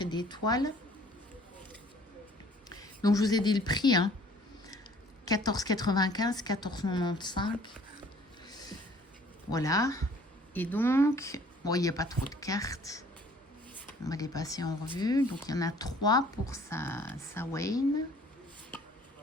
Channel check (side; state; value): both; normal; correlation 0.55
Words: d'étoiles. Donc, je vous ai dit le prix, hein. 14,95, 14,95. Voilà. Et donc, bon, il n'y a pas trop de cartes. On va les passer en revue. Donc, il y en a 3 pour sa Wayne.